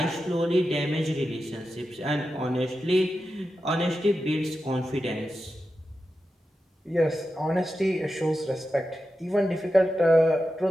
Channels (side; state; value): both; normal; correlation 0.90